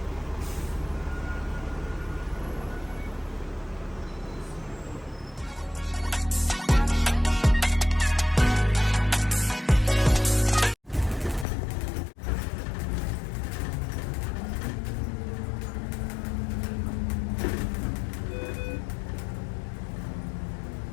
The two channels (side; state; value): right; drops out; at 11.5 s